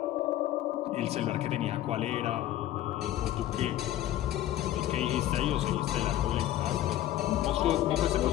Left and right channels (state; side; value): quieter; right; 13.2 dB